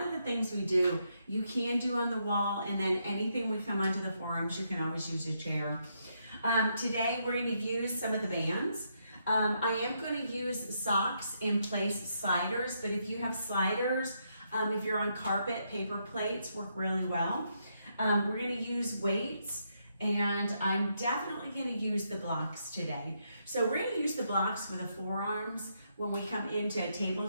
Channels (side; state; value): both; inverted; correlation -0.78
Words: of the things we do, you can do on the wall, and then anything we come onto the forearms, you can always use a chair. Today we're gonna use some of the bands. I am gonna use socks in place sliders, but if you have sliders, if you're on carpet, paper plates work really well. We're gonna use weights, and I'm definitely gonna use the blocks today. So we're gonna use the blocks for the forearms when we come into a